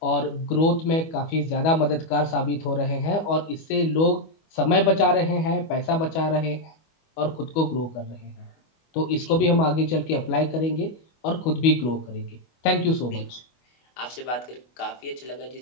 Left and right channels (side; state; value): right; late; 25 ms